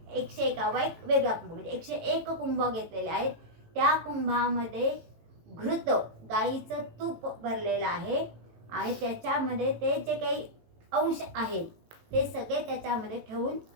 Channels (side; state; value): left; late; 18 ms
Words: 101 एक वेगळा कुंभ, म्हणजे 101 कुंभ घेतलेले आहेत. त्या कुंभामध्ये घृत गाईचं तूप भरलेलं आहे आणि त्याच्यामध्ये ते जे काही अंश आहेत ते सगळे त्याच्यामध्ये ठेवून